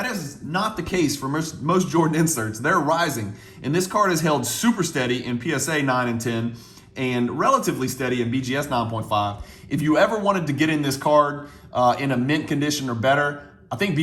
is not the case for most Jordan inserts. They're rising. And this card is held super steady in PSA 9 and 10 and relatively steady in BGS 9.5. If you ever wanted to get in this card in a mint condition or better, I think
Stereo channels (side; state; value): both; identical; correlation 1.00